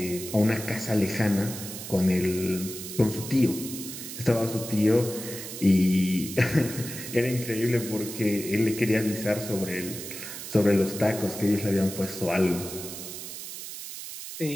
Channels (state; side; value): noise; right; hiss, 9 dB below the sound